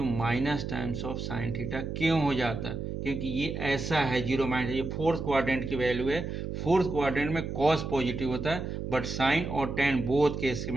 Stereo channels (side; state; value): right; noise; hum, 5 dB below the sound